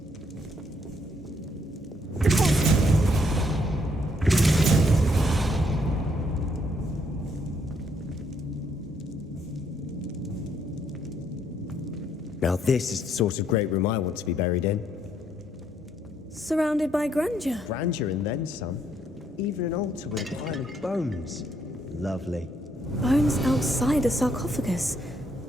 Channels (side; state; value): both; normal; correlation 0.71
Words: Now this is the sort of great room I want to be buried in. Surrounded by grandeur. Grandeur and then some. Even an altar with a pile of bones. Lovely. Bones outside a sarcophagus.